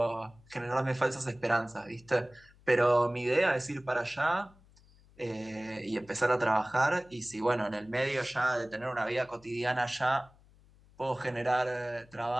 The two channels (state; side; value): noise; left; hum, 27 dB below the sound